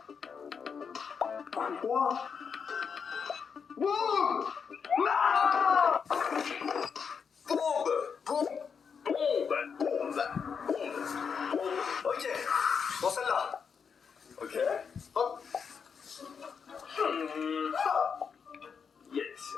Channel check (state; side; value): quieter; right; 6.3 dB